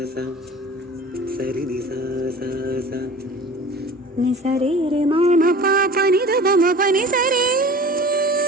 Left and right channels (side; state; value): both; normal; correlation 0.41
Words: sa sari ni sa sa sa ni sari re ma ma pa pa ni da ba ma pa ni sari